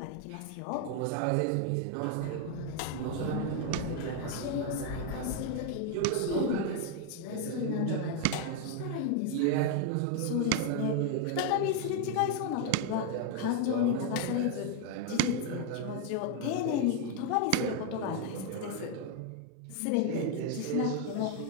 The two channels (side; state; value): both; different; correlation 0.01